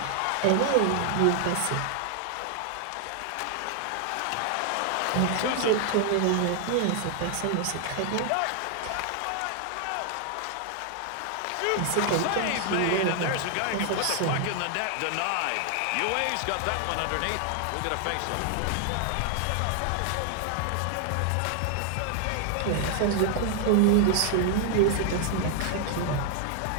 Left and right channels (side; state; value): both; different; correlation 0.00